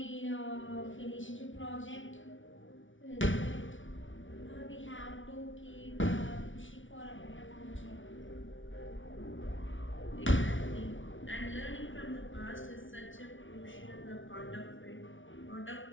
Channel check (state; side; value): late; right; 0.56 ms